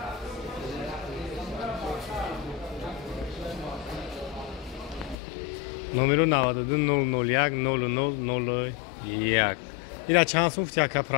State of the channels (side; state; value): right; drops out; at 5.2 s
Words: номеру 92 001 0001. Ира чанд сум фтяка